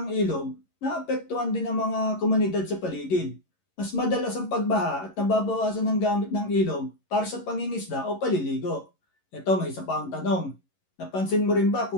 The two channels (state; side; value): late; right; 11 ms